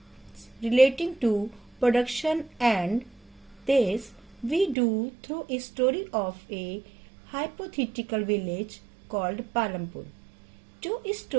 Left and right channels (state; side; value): drops out; left; at 4.8 s